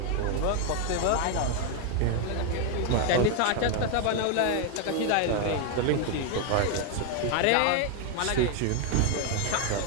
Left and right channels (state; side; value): different; both; correlation 0.01